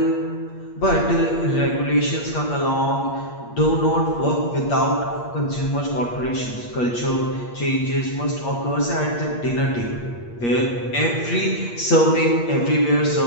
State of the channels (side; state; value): right; late; 8.5 ms